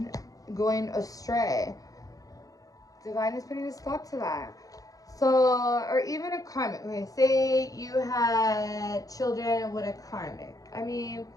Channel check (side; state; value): right; late; 0.17 ms